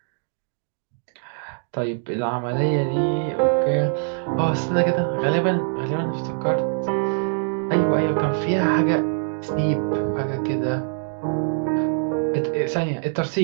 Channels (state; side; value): silent; left; 63 dB below the other